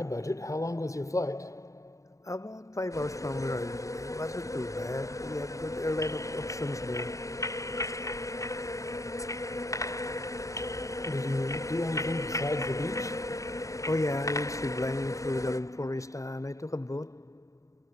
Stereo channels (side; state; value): right; late; 0.16 ms